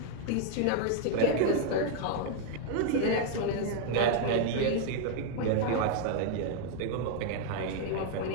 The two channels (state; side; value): different; both; correlation 0.00